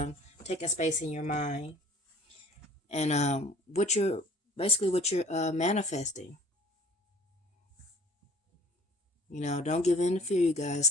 taking space in your mind, and what you're manifesting. Don't give in to fear, you guys.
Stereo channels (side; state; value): both; normal; correlation 0.51